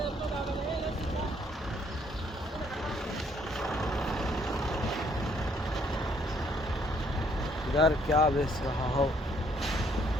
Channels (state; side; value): normal; both; correlation 0.67